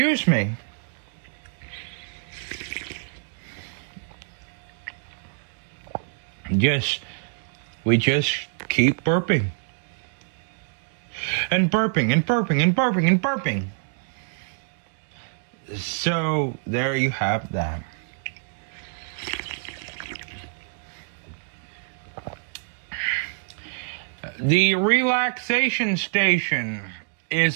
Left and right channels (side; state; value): left; silent; digital silence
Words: me. We just keep burping. And burping and burping and burping and burping. So there you have that. The relaxation station